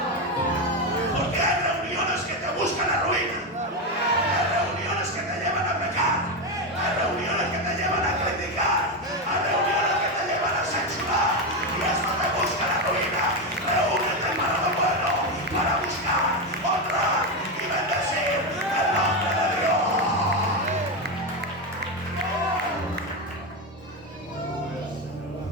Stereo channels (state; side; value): normal; both; correlation 0.11